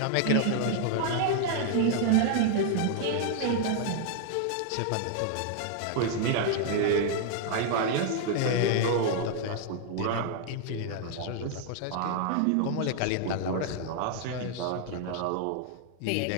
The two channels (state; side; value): different; both; correlation 0.00